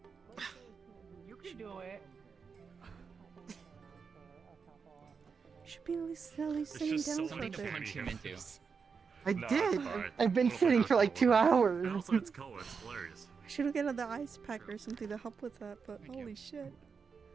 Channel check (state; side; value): quieter; left; 5.6 dB